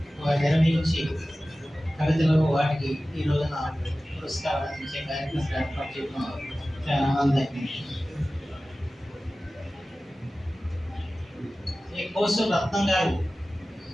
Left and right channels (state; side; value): normal; both; correlation 0.96